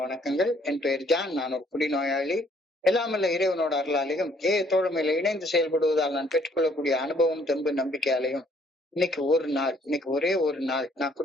வணக்கங்கள். என் பெயர் ஜான். நான் ஒரு குடிநோயாளி. எல்லாமல்ல இறைவனோட அருளாலையும் தோழமையில இணைந்து செயல்படுவதால் நான் பெற்றுக்கொள்ளக்கூடிய அனுபவம், தெம்பு, நம்பிக்கையாலையும் இன்னைக்கு ஒரே ஒரு நாள் நான்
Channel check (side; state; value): both; normal; correlation 0.64